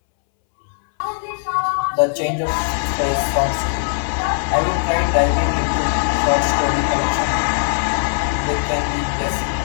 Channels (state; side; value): silent; right; 66 dB below the other